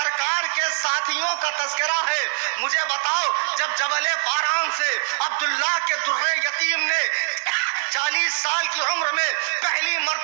کے ساتھیوں کا تذکرہ ہے۔ مجھے بتاؤ، جب جبل پاران سے عبداللہ کے در یتیم نے 40 سال کی عمر میں پہلی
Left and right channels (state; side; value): silent; left; 61 dB below the other